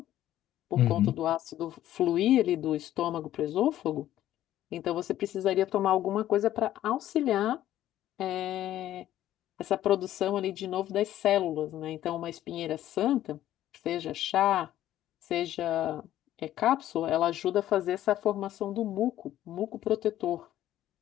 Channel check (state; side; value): quieter; right; 13.0 dB